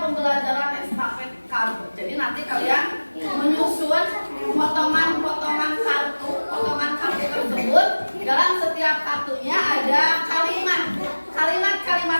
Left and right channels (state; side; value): inverted; both; correlation -1.00